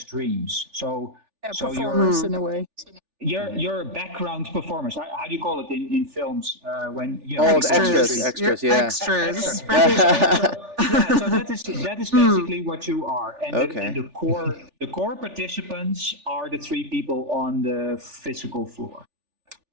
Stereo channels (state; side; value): late; left; 3.4 ms